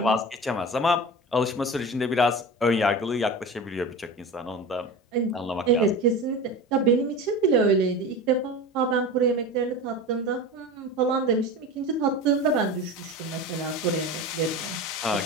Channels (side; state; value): both; normal; correlation 0.30